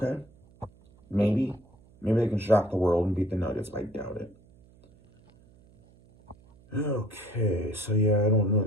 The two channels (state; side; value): noise; right; hum, 28 dB below the sound